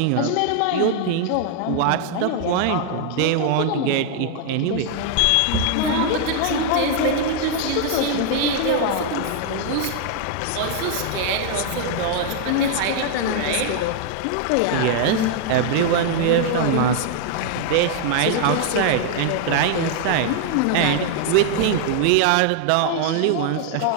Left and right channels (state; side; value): different; both; correlation 0.00